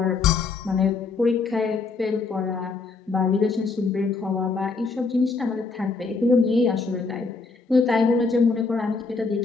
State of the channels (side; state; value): right; quieter; 4.3 dB